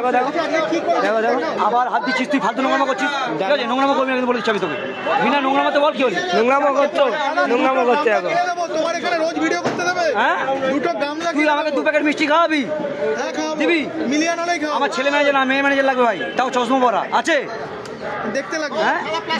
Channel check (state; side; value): identical; both; correlation 1.00